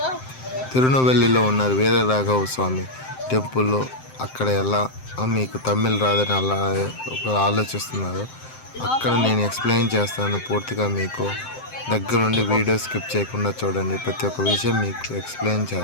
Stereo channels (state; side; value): late; right; 7.7 ms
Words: తిరునెల్వేలిలో ఉన్నారు వీర రాఘవ స్వామి టెంపుల్లో. అక్కడ ఎలా మీకు తమిళ్ రాదని అలా ఒక ఆలోచిస్తున్నారు. అక్కడ నేను ఎక్స్ప్లెయిన్ చేస్తాను పూర్తిగా. మీకు దగ్గరుండి వీడియో స్కిప్ చేయకుండా చూడండి. ప్రతి ఒక్క విషయం మీకు ఎక్స్ప్లెయిన్